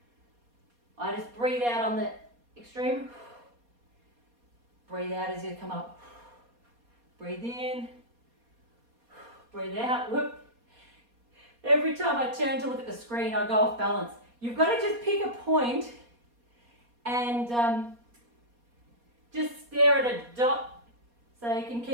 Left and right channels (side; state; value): left; late; 4.2 ms